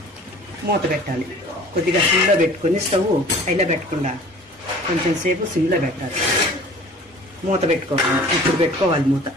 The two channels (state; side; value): normal; both; correlation 0.46